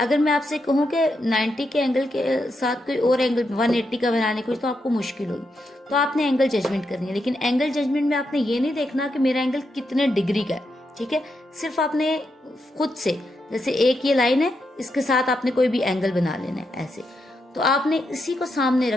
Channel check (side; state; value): both; normal; correlation 0.83